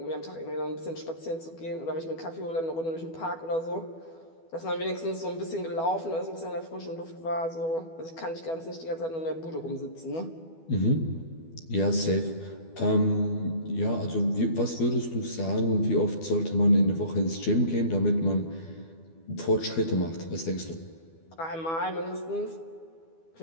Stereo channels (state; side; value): late; right; 12 ms